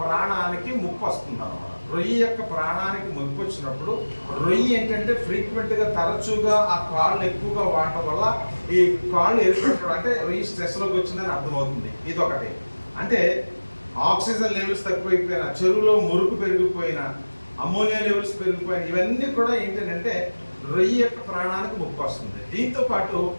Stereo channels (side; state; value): both; inverted; correlation -1.00